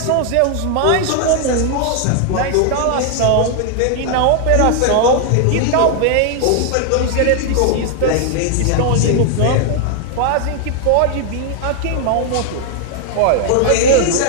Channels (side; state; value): both; different; correlation 0.00